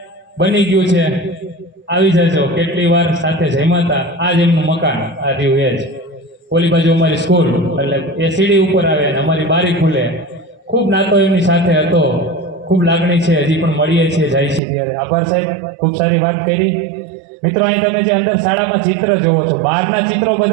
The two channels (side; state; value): left; drops out; at 14.6 s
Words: બની ગયું છે, આવી જજો. કેટલી વાર સાથે જમ્યા હતા. આ જ એમનું મકાન, આ રહ્યું એ જ. ઓલી બાજુ અમારી સ્કૂલ, એટલે એ સીડી ઉપર આવે ને અમારી બારી ખુલે. ખૂબ નાતો એમની સાથે હતો, ખૂબ લાગણી છે, હજી પણ મળીએ છીએ, જાય છે ત્યારે. આભાર સાહેબ, ખૂબ સારી વાત કરી. મિત્રો અહીં તમે જે અંદર શાળામાં ચિત્ર જોવો છો, બહારના ચિત્રો